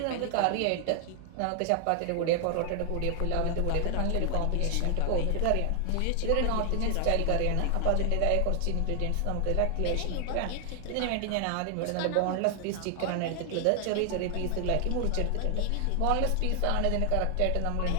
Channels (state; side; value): different; both; correlation 0.00